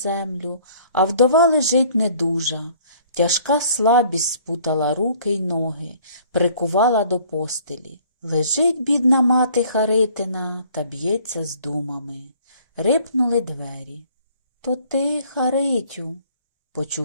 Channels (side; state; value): both; inverted; correlation -0.56